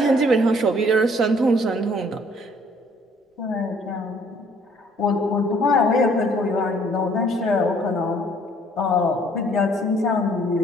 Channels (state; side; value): normal; both; correlation 0.60